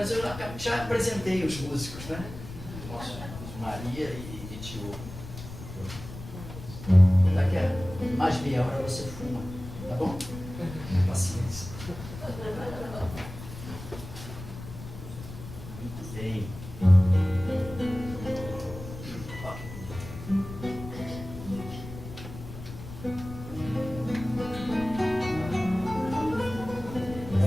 eu já apresentei os músicos, né? Nossa, Maria e Tio. Daqui a mais meia hora você fuma, tá bom? Paciência. Muito bem.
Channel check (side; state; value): left; noise; rumble, 12 dB below the sound